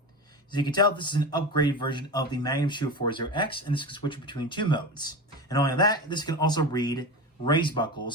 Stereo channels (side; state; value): both; normal; correlation 0.25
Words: As you can tell, this is an upgraded version of the Magnum Shield 40X, and this can switch between two modes. And only that, this can also read race